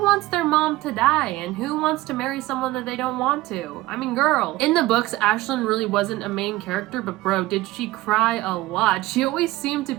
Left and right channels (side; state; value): left; quieter; 18.3 dB